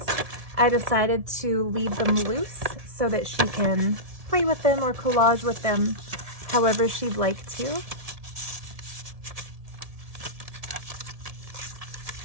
I decided to leave them loose so that she can play with them or collage with them however she'd like to.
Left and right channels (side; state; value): left; late; 1.6 ms